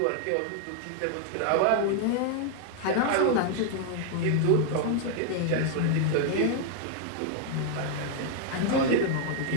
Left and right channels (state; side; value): different; both; correlation 0.00